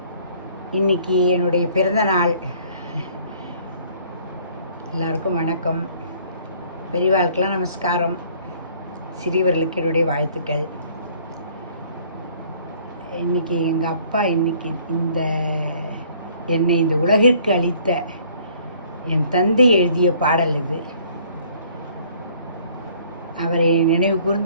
இன்னைக்கு என்னுடைய பிறந்த நாள். எல்லாருக்கும் வணக்கம். பெரியவாளுக்கெல்லாம் நமஸ்காரம், சிறியவர்களுக்கு என்னுடைய வாழ்த்துக்கள். இன்னைக்கு எங்கள் அப்பா என்னை இந்த உலகிற்கு அளித்த என் தந்தை எழுதிய பாடல் இது. அவரை நினைவு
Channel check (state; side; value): inverted; both; correlation -0.58